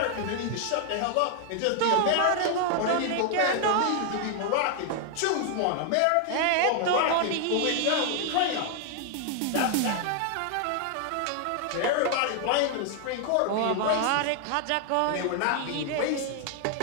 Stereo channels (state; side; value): different; both; correlation 0.00